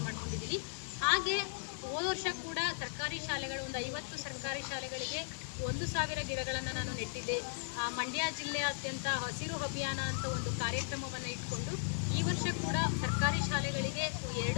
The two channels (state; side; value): silent; right; digital silence